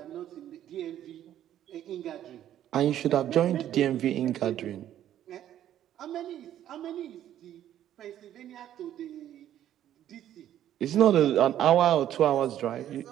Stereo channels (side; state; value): left; quieter; 11.4 dB